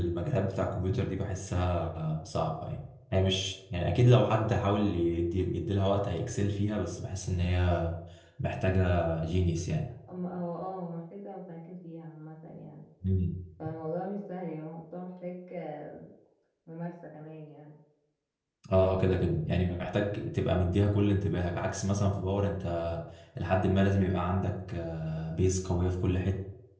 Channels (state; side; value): identical; both; correlation 1.00